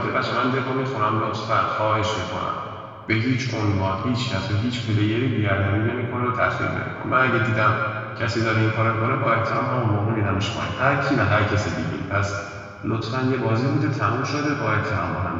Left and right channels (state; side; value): identical; both; correlation 1.00